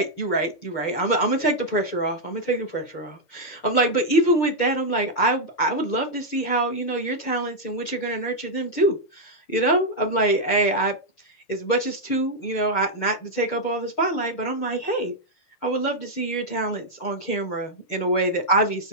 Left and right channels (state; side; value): late; right; 6.6 ms